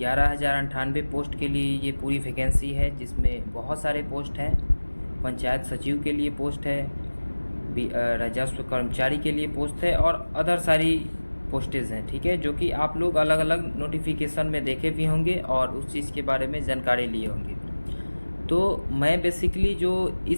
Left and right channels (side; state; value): both; inverted; correlation -1.00